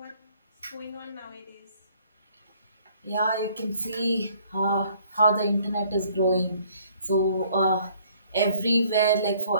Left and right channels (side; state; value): both; inverted; correlation -0.60